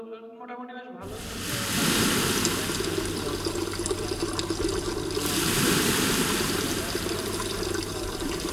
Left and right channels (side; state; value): both; identical; correlation 1.00